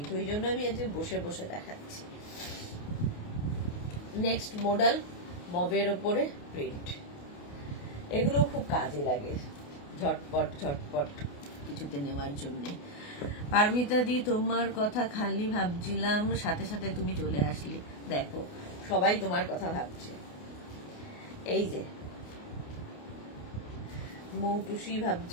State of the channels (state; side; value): late; right; 28 ms